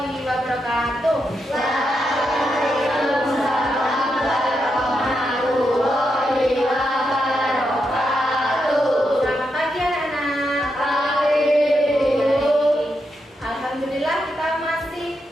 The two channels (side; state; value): both; normal; correlation 0.84